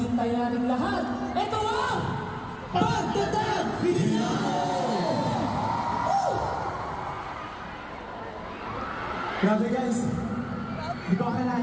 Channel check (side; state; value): both; identical; correlation 1.00